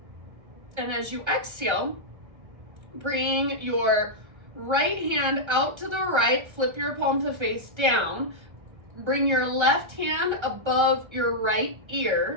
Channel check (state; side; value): late; left; 1.3 ms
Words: And as you exhale, bring your right hand out to the right, flip your palm to face down. Bring your left hand above your right